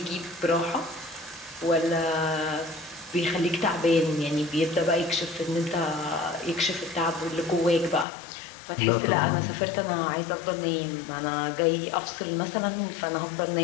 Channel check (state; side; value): drops out; right; at 8.1 s